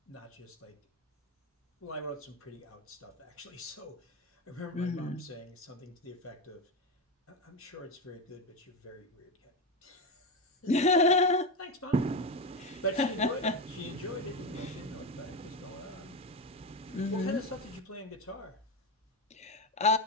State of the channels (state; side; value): normal; both; correlation 0.15